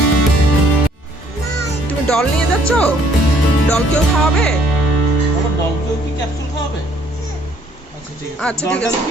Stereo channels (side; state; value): both; normal; correlation 0.63